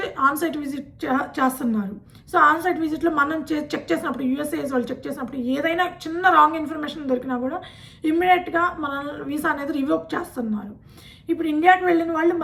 ఆన్సైట్ విజిట్ చేస్తున్నారు. సో ఆన్సైట్ విజిట్లో మనం చెక్ చేసినప్పుడు, యూఎస్ఏఎస్ వాళ్ళు చెక్ చేసినప్పుడు ఏదైనా చిన్న రాంగ్ ఇన్ఫర్మేషన్ దొరికినా కూడా ఇమ్మీడియట్గా మన వీసా అనేది రివోక్ చేస్తున్నారు. ఇప్పుడు ఇండియాకి వెళ్ళిన వాళ్ళు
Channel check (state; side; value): identical; both; correlation 1.00